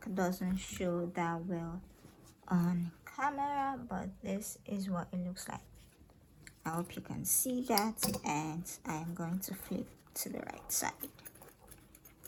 doesn't show that well on camera, but this is what it looks like. I hope you can see that, and I am going to flip to the right side.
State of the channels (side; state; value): both; identical; correlation 1.00